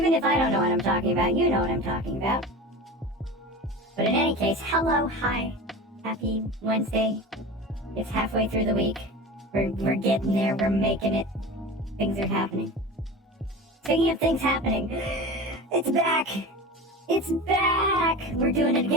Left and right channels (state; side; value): normal; both; correlation 0.31